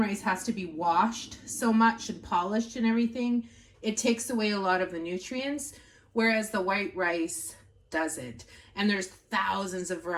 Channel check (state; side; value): identical; both; correlation 1.00